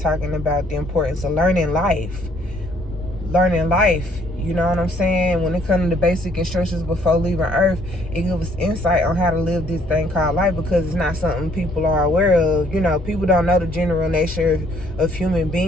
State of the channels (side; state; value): both; normal; correlation 0.64